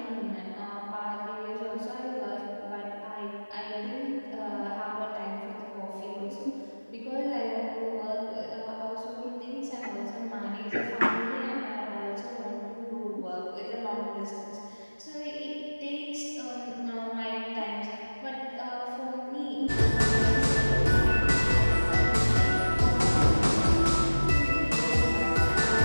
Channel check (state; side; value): inverted; both; correlation -1.00